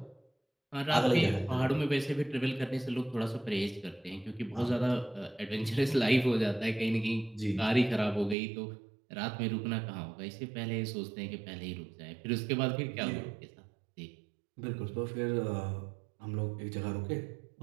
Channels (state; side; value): drops out; left; at 8.3 s